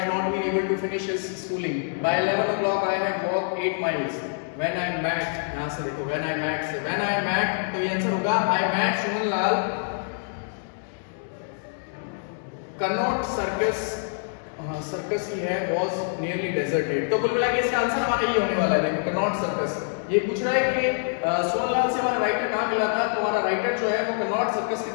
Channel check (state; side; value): silent; right; digital silence